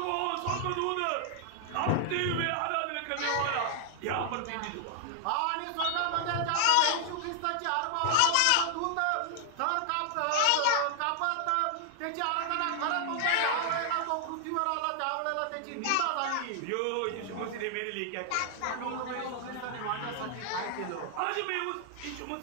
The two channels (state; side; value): different; both; correlation 0.00